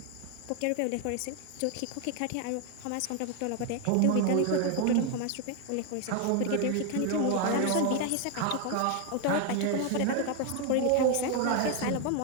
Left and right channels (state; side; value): different; both; correlation 0.00